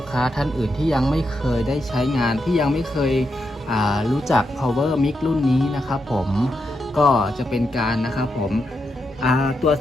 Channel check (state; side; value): normal; both; correlation 0.84